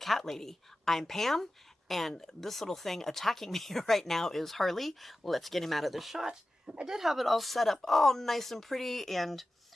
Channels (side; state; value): both; normal; correlation 0.95